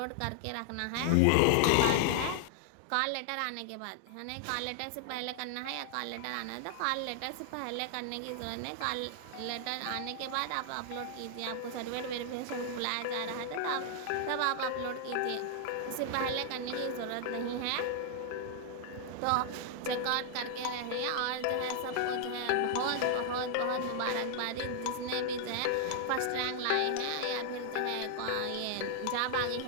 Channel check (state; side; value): different; both; correlation 0.00